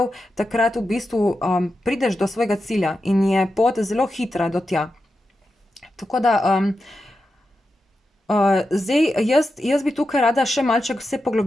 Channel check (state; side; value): normal; both; correlation 0.89